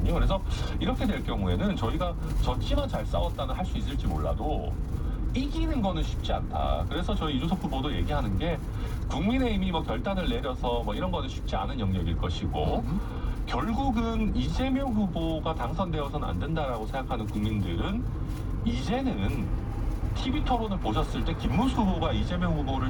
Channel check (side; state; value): both; identical; correlation 1.00